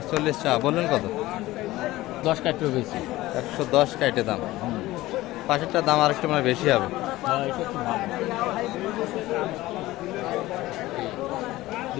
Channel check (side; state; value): right; quieter; 17.6 dB